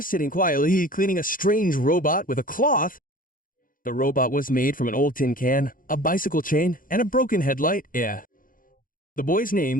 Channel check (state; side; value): late; right; 0.40 ms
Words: sitting quietly, cleaning a strange robot with a cloth. The robot was made from an old tin can, a bicycle chain, and a broken headlight. The boy's